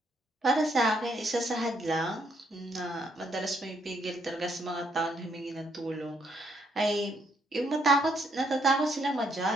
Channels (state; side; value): normal; both; correlation 0.72